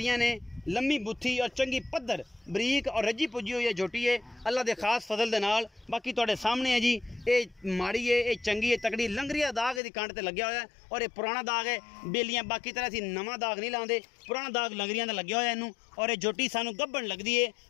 ने, लम्मी बुत्थी और चंगी पद्धर बरीक और रजी पुजी हुई है झोटी है अल्लाह दे खास फजल दे नाल। बाकी तुहाडे सामने है जी, ये माड़ी है, ये चंगी है, तकड़ी। लंगरिया दाग इहदी कंड ते लग्या होया है और ये पुराना दाग है बेलियां। बाकी तरह असीं नवां दाग नहीं लांदे, पुराना दाग लंगरियां ते लग्या होया इनू। और ये झोटी सानू गब्बन लगदी है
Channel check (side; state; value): right; drops out; at 9.8 s